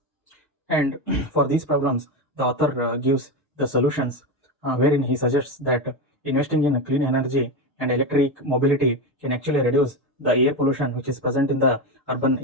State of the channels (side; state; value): both; normal; correlation 0.15